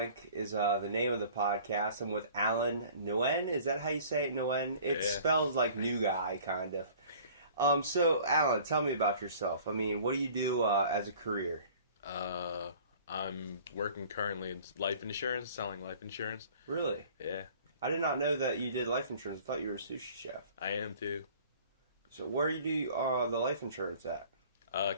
is the name of the podcast. I'm with Alan Nguyen. Is that how you say it, Nguyen? It spells like new guy, kind of. So, Alan, tell me about yourself. I mean, what do you do as a career? I'm working currently in life insurance, selling life insurance. Really? Yeah. I did not know that you did life insurance. I thought you were a sushi chef. I am too. So, where do you do the life insurance at?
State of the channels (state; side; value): inverted; both; correlation -0.49